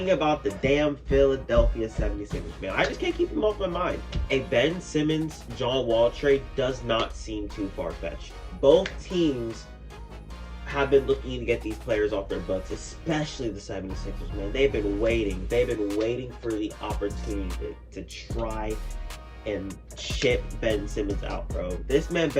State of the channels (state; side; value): identical; both; correlation 1.00